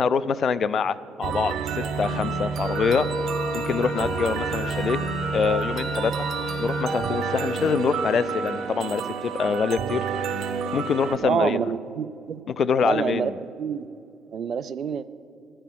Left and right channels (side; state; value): both; normal; correlation 0.70